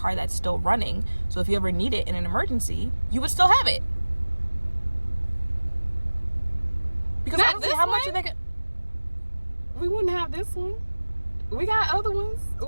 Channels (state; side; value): inverted; both; correlation -1.00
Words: that's still running. So if you ever need it in an emergency, you would still have it. Because Not honestly, this how much one? are they? We wouldn't have this one. We got other ones.